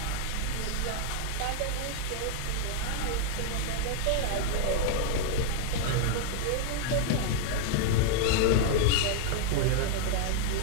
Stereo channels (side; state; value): both; different; correlation -0.01